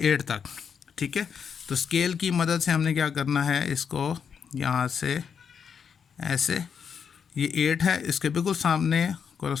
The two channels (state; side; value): quieter; right; 7.0 dB